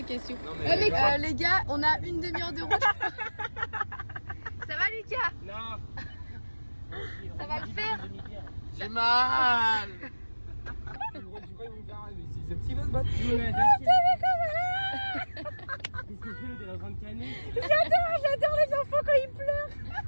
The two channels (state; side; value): inverted; both; correlation -1.00